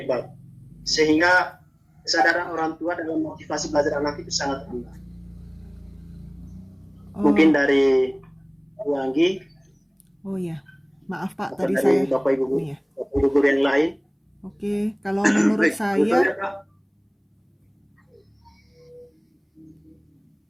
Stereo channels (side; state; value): both; identical; correlation 1.00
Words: sehingga kesadaran orang tua dalam motivasi belajar anak itu sangat rendah? Mungkin dari Bu Anggi. Oh ya, maaf Pak, atau tadi dari saya. Bapak Ibu, Oh, iya. Bapak Ibu guru yang lain. Oke, kalau menurut saya,